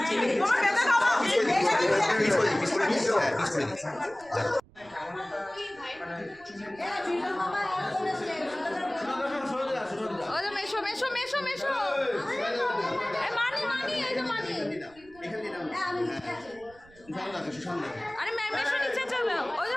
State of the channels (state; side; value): noise; right; rumble, 26 dB below the sound